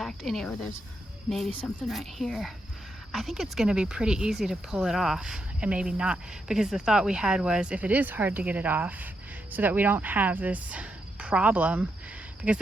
anywhere. There's maybe something right here. I think it's going to be pretty easy to pull it off, and maybe not, because the thought we had was if it is hard to get it off, so that we don't have this problem, because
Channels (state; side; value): normal; both; correlation 0.82